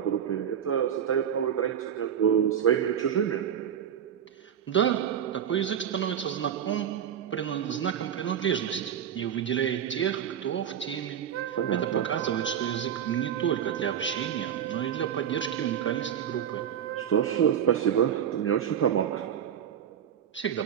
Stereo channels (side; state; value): left; quieter; 9.1 dB